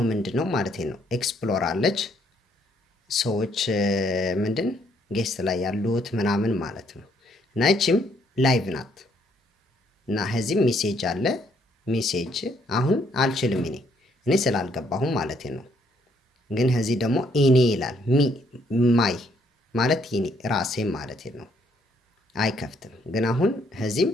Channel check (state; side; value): normal; both; correlation 0.69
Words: ምንድነው ማለት ነው ኤክስፕሎር አለች ሰዎች ምንድን ጌስት ላይ ያሉት ምናምን ማለት ነው። እና እቺም ላይቭ ናት። እና ከዚህም ሜሴጅ አለ። ሜሴጅ አሁን አልችልም እኔ ስላልገባሁም ማለት ነው። ግን ከዚህ ደግሞ ኢኔ ይላል ማይ ማለት ኢኔ ራሴ ማለት ነው። አይከፍትም። ግን አሁን ከዚህም